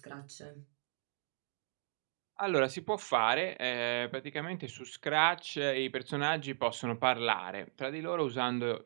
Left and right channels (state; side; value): silent; left; digital silence